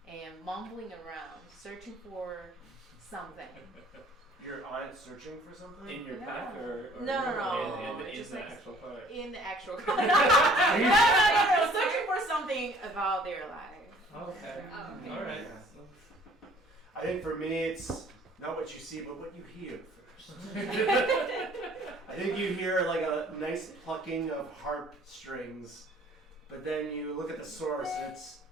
and mumbling around, searching for something. You're on it searching for something? In your No. pack or No. in Just the like actual car? In the actual car. No, searching for something about their life. Okay. Oh, okay. All right. I think for me, it's not what you see, but what you hear first. I think you hear like a nice plucking of harp strings, but then you look at the source, it's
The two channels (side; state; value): both; normal; correlation 0.55